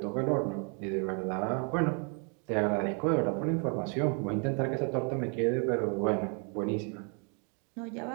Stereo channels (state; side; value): quieter; left; 37.9 dB